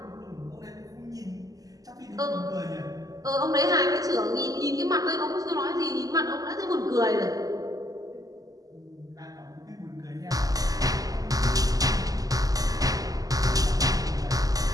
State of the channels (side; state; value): left; late; 0.17 ms